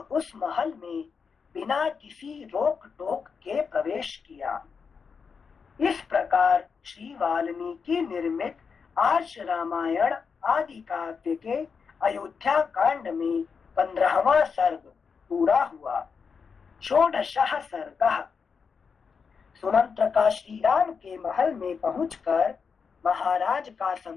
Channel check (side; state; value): right; quieter; 5.7 dB